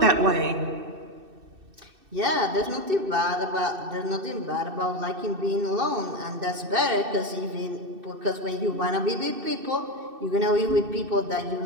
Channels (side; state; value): left; late; 2.6 ms